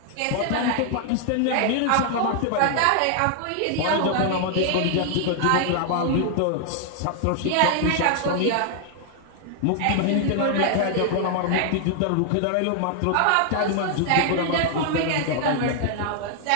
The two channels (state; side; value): different; both; correlation 0.00